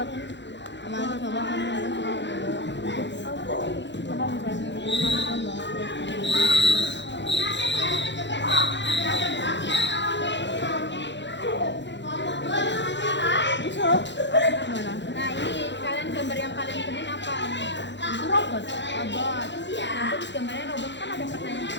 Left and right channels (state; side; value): late; right; 0.52 ms